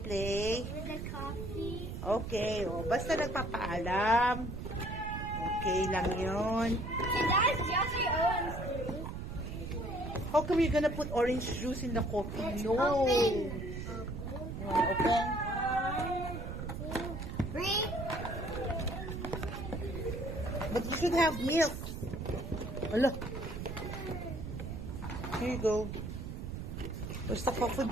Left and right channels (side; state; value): right; noise; rumble, 7 dB below the sound